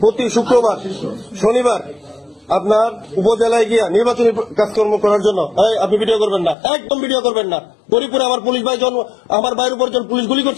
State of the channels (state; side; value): drops out; right; at 6.6 s